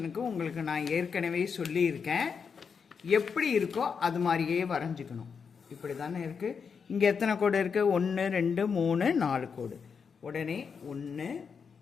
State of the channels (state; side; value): quieter; right; 6.1 dB